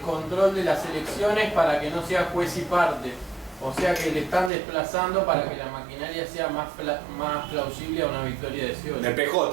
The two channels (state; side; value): drops out; left; at 4.5 s